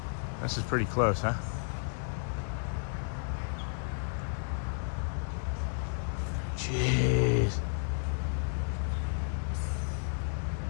This is pretty close, huh? Jeez.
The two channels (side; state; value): right; silent; 56 dB below the other